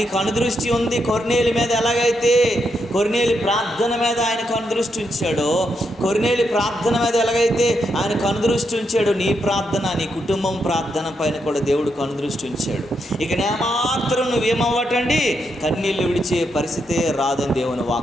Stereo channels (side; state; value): both; normal; correlation 0.81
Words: అనుదృష్టి ఉంది. కొర్నేలి మీద ఎలాగైతే కొర్నేలి ప్రార్థన మీద ఆయన కనుదృష్టి ఉంచాడో, కొర్నేలి ప్రార్థన మీద ఎలాగైతే ఆయన కనుదృష్టి ఉంచాడో, నీ ప్రార్థన, నీ కుటుంబం ప్రార్థన పైన కూడా దేవుడు కనుదృష్టి ఉంచాడు. ఇక నేమాత్రం నువ్వేమవ్వటండి, కన్నీళ్ళు విడిచే పరిస్థితే రాదని దేవుని